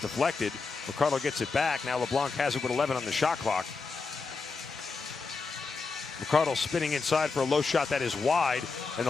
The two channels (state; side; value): quieter; right; 4.5 dB